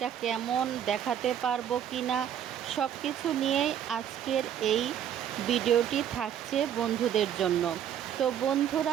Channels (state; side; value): quieter; left; 9.7 dB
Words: কেমন, দেখাতে পারবো কি না, সব কিছু নিয়েই আজকের এই ভিডিওটি থাকছে বন্ধুদের জন্য। তো